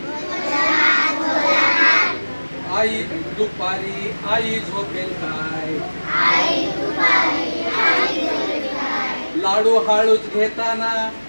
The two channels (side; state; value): both; inverted; correlation -1.00